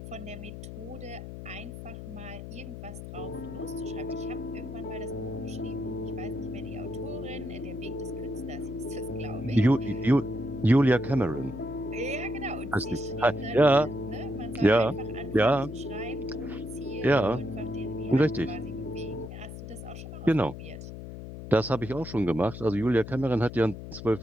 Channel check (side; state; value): left; noise; hum, 10 dB below the sound